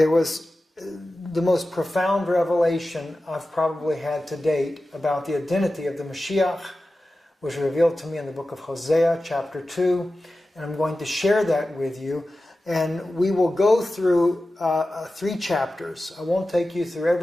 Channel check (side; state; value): both; normal; correlation 0.94